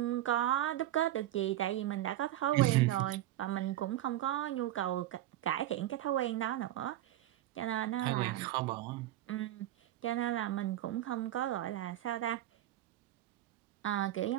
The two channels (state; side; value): quieter; left; 13.9 dB